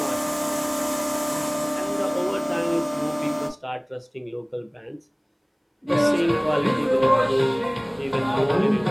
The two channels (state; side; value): identical; both; correlation 1.00